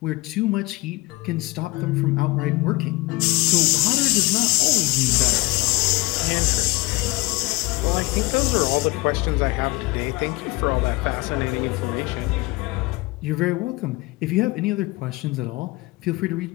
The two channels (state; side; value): quieter; right; 22.7 dB